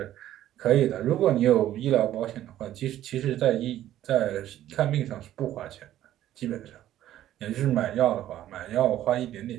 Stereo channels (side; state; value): left; quieter; 12.8 dB